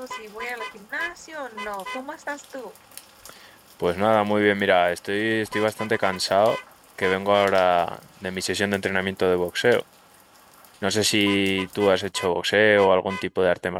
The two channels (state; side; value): identical; both; correlation 1.00